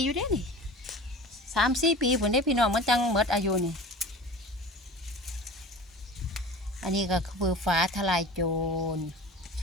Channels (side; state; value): both; normal; correlation 0.37